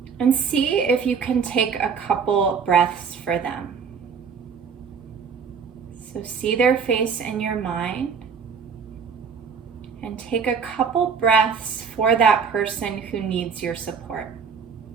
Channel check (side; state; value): left; quieter; 6.2 dB